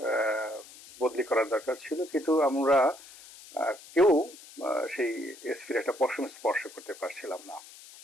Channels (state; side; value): noise; left; hiss, 19 dB below the sound